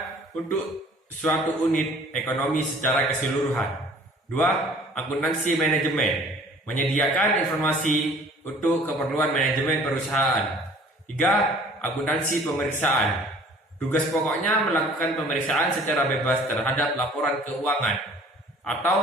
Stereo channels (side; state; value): both; normal; correlation 0.51